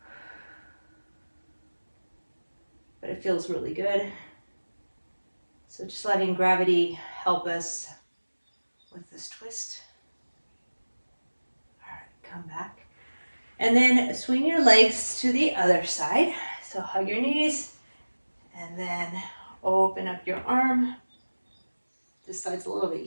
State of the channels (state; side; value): inverted; both; correlation -1.00